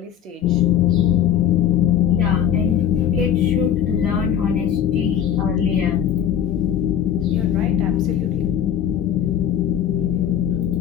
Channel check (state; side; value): quieter; right; 9.5 dB